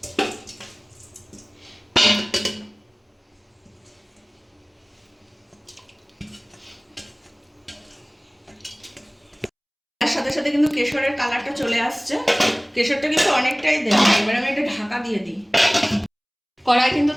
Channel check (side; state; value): both; identical; correlation 1.00